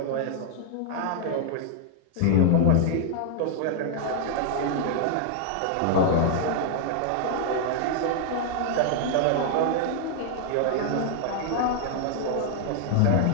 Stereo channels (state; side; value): different; both; correlation 0.00